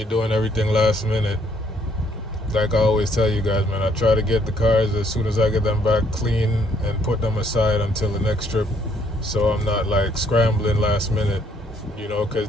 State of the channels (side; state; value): both; normal; correlation 0.67